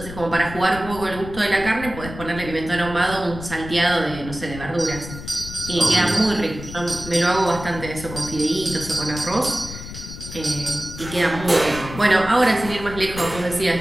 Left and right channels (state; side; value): noise; left; rumble, 11 dB below the sound